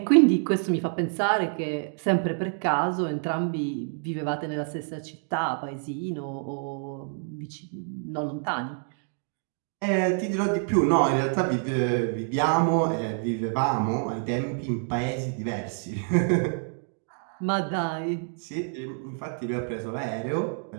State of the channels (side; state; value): left; silent; 60 dB below the other